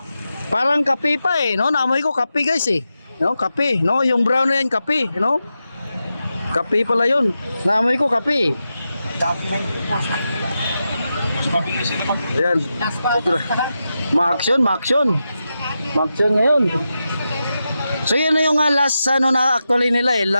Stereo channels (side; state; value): both; inverted; correlation -0.90